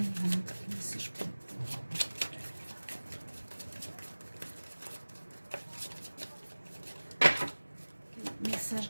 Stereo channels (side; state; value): both; inverted; correlation -1.00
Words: quel message pour quel message